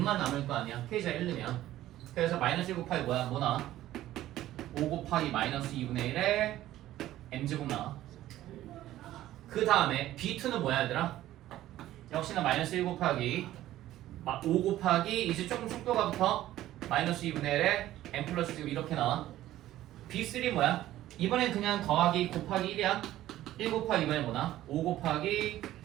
남을 거 아니야. k 자리 1 넣으면. 그래서 마이너스 1 곱하기 뭐야? 뭐 나와? 5 곱하기 마이너스 2분의 1에 m제곱 나와. 그 다음에 b2는 뭐야 얘들아? 역시나 마이너스 1 곱하기 5 곱하기 이제 조금 속도가 붙어 마이너스 2분의 1에 m 플러스 지금 이렇게 나와. b3 뭐야? 이번엔 그냥 더하기 곱하기 1이야. 1 곱하기 이번엔 뭐나? 5 곱하기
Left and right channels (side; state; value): left; quieter; 14.2 dB